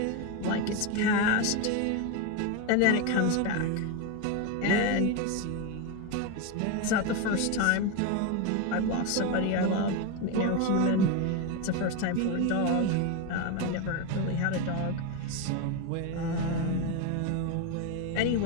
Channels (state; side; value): different; both; correlation 0.03